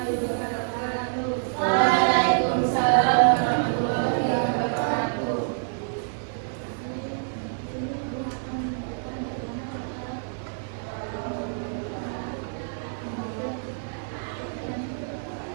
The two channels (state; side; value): silent; left; digital silence